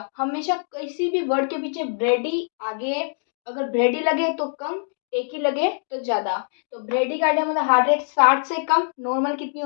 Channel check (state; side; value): silent; right; digital silence